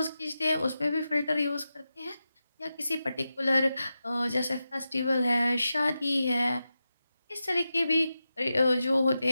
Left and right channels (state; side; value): inverted; both; correlation -0.91